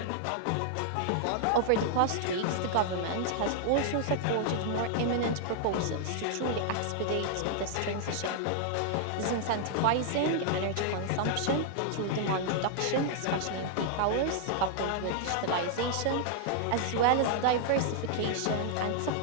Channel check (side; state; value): both; different; correlation 0.00